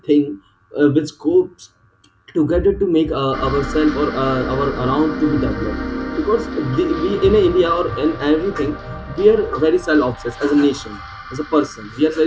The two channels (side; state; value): both; identical; correlation 1.00